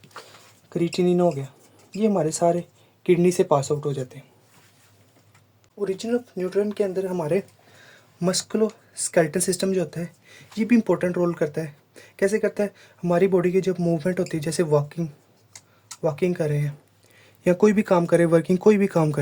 क्रिएटिनिन हो गया, ये हमारे सारे किडनी से पास आउट हो जाते हैं। ओरिजिन ऑफ न्यूट्रिएंट के अंदर हमारे मस्कुलो स्केलेटल सिस्टम जो होता है, ये भी इम्पोर्टेंट रोल करता है। कैसे करता है, हमारी बॉडी की जब मूवमेंट होती है, जैसे वॉकिंग कर रहे हैं या कोई भी काम कर रहे हैं, वर्किंग कोई भी काम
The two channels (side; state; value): both; identical; correlation 1.00